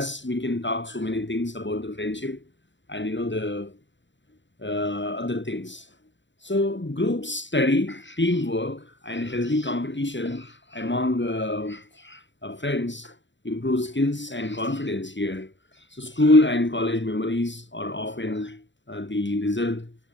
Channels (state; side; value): late; right; 0.54 ms